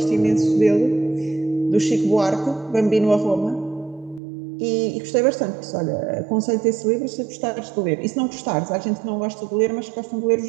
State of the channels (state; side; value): drops out; left; at 4.2 s